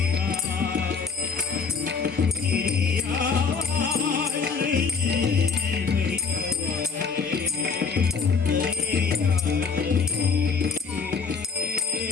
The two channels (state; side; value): quieter; right; 5.3 dB